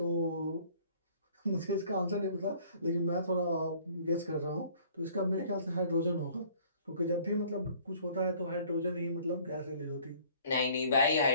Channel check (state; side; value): inverted; both; correlation -0.55